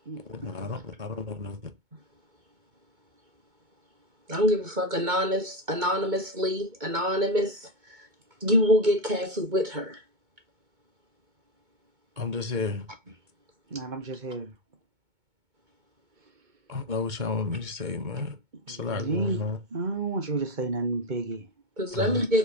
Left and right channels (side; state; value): left; late; 2.2 ms